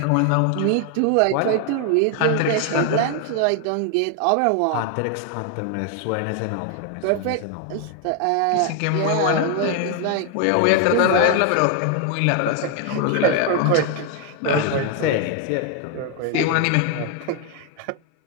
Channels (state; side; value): different; both; correlation 0.01